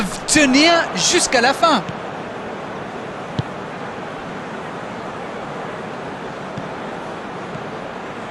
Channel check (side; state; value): both; identical; correlation 1.00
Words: tenir jusqu'à la fin?